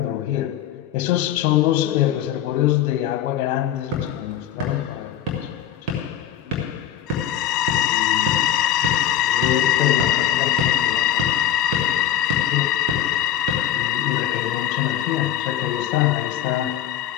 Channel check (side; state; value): right; quieter; 10.8 dB